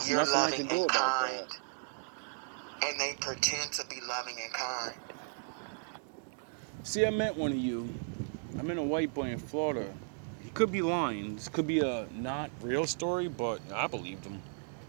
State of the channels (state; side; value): silent; left; digital silence